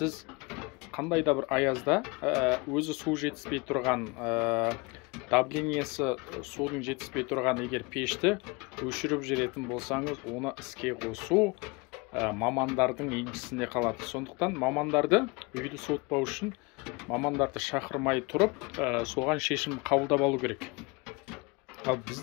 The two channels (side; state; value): right; quieter; 27.4 dB